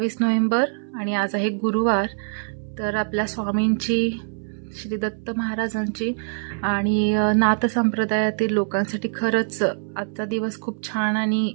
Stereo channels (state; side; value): silent; left; 63 dB below the other